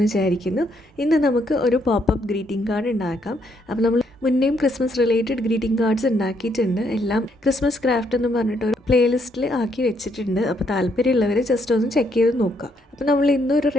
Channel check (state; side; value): normal; both; correlation 0.73